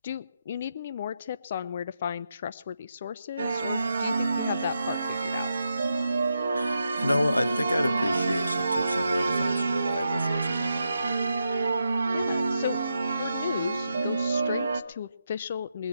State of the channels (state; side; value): inverted; both; correlation -0.85